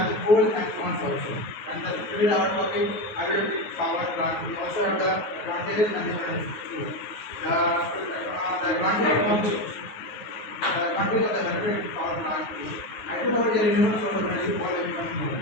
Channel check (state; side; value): late; right; 9.4 ms